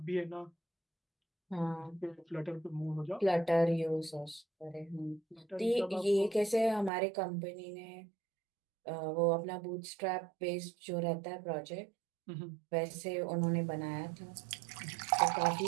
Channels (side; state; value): left; drops out; at 6.9 s